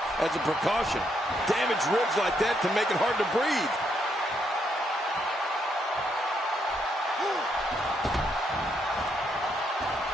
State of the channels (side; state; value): both; normal; correlation 0.76